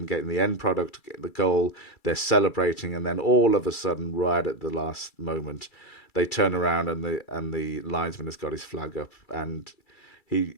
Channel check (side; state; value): right; late; 2.3 ms